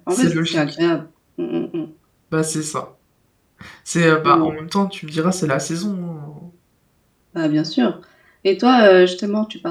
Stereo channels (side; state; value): both; identical; correlation 1.00